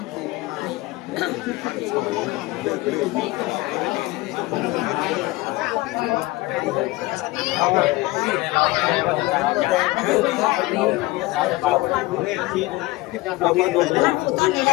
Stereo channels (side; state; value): right; quieter; 20.0 dB